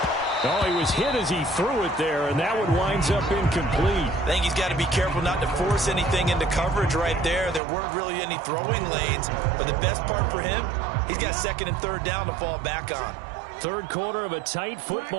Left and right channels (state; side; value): drops out; left; at 7.6 s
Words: Oh, he was hit as he threw it there, and that one winds up incomplete. I think he's got to be careful not to force anything into coverage right there. There weren't really any throwing lanes, but the best part for him, he's got 2nd and 3rd down to fall back on. 3rd quarter of a tight